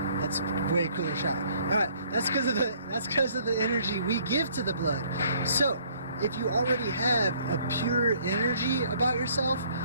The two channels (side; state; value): both; inverted; correlation -0.61